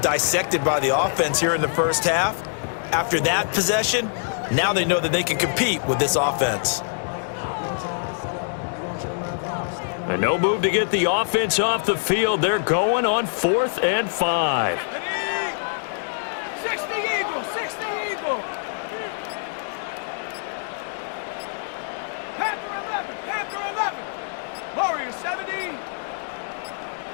by the offense here in the first half. After that possession, now they know that they can compete with this offense. And no move to get the offense off the field. They're going on 4th and 5. 60 Eagles, 60 Eagles.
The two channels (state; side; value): silent; right; 62 dB below the other